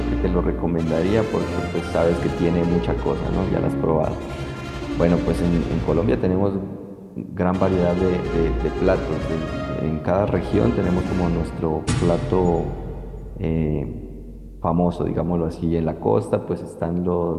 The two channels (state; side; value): identical; both; correlation 1.00